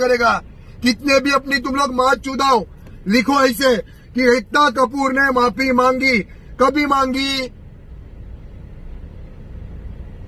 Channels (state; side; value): identical; both; correlation 1.00